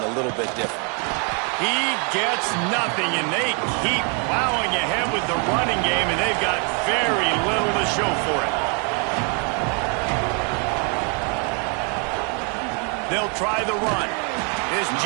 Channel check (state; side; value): quieter; left; 37.0 dB